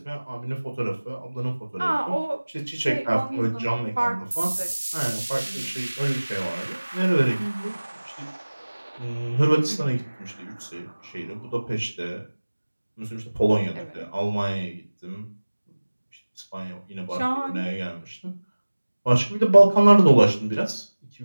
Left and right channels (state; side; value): inverted; both; correlation -1.00